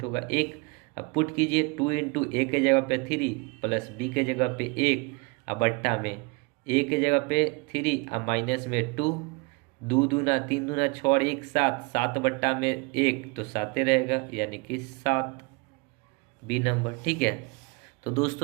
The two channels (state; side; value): quieter; left; 28.4 dB